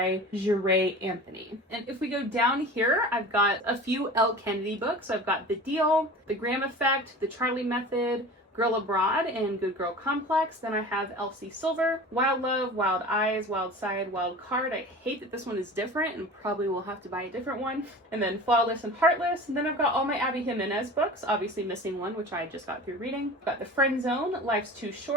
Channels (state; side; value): normal; both; correlation 0.37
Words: Jure Anthony. And if we go down here, I've got a few Elle Kennedy books. I've got The Deal, The Graham Effect, The Charlie Method, Girl Abroad, and Good Girl Complex. Then I have Elsie Silver, Wild Love, Wild Eyes, Wild Side, Wild Card. I hate that this one is different and probably will have to buy a different one. And then Flawless and Heartless. And then I've got all my Abby Jimenez books, obviously missing one, which I just got through reading. I've got The Friend Zone, Life's Too